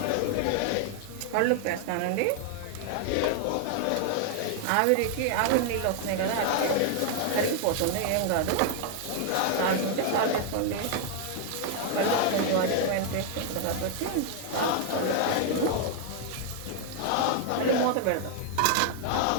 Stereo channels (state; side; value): different; both; correlation 0.00